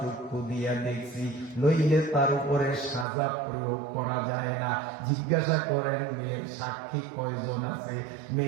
দিয়া দেখছি, নইলে তার উপরে সাজা প্রয়োগ করা যায় না। জিজ্ঞাসা করেন মেয়ের সাক্ষী কয়জন আছে?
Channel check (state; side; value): drops out; left; at 3.1 s